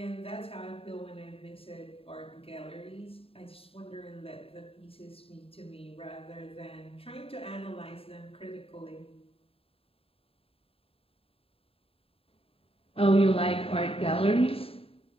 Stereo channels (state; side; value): late; right; 0.27 ms